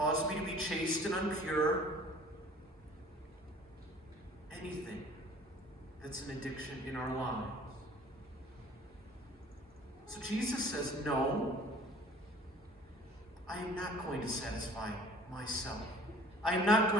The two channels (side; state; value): both; normal; correlation 0.49